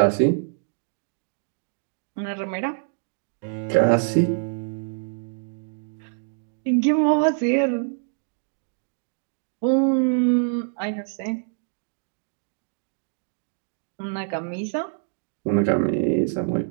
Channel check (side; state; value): left; silent; digital silence